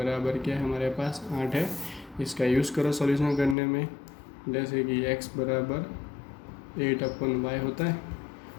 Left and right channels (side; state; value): right; drops out; at 3.6 s